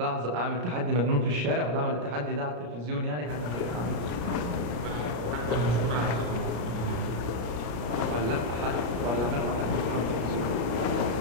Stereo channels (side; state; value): left; late; 34 ms